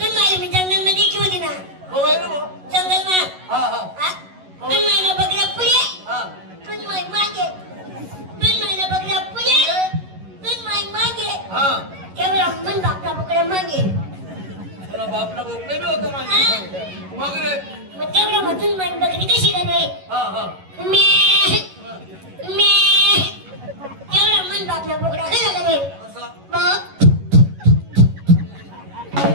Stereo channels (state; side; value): late; left; 11 ms